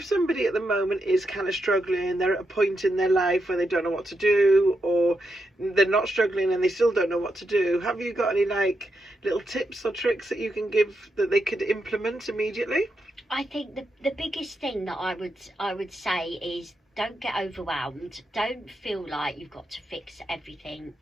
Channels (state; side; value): normal; both; correlation 0.84